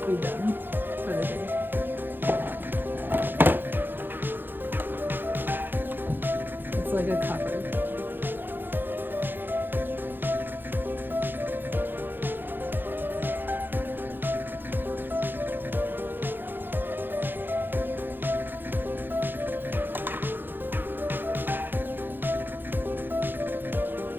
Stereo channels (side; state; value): left; late; 0.096 ms